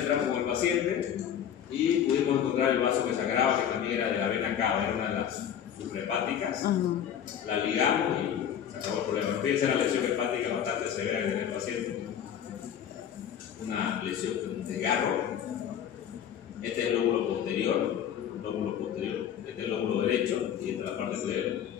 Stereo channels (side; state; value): right; quieter; 9.3 dB